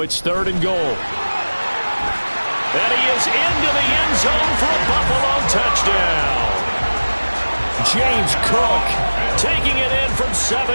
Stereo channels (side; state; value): both; inverted; correlation -1.00